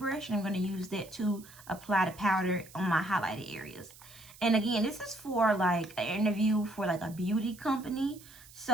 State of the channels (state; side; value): noise; right; hiss, 21 dB below the sound